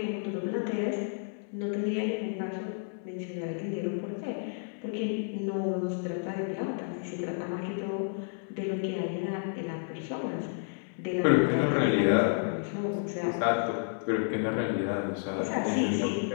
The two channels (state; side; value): silent; right; digital silence